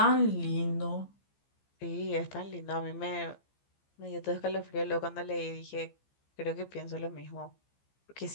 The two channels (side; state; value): right; late; 15 ms